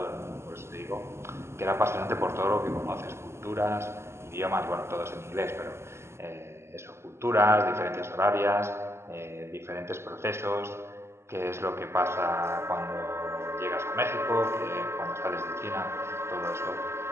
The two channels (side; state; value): left; late; 0.13 ms